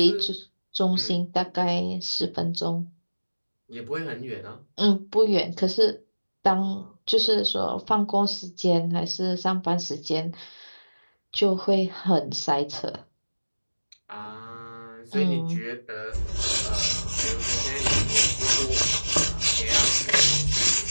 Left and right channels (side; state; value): both; inverted; correlation -1.00